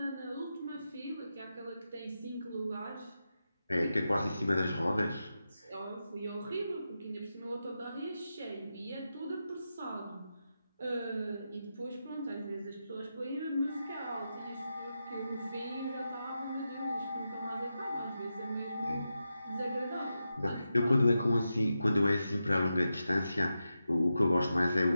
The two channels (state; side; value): inverted; both; correlation -0.89